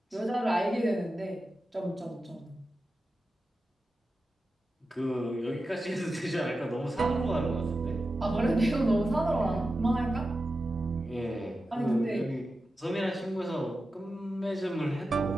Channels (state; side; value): normal; both; correlation 0.92